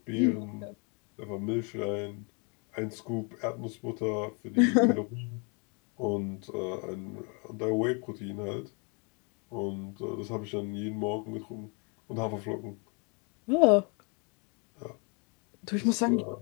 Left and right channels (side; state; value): right; quieter; 34.9 dB